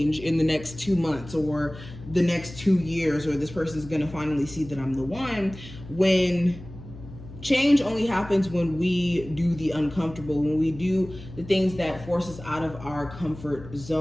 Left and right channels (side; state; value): left; noise; hum, 15 dB below the sound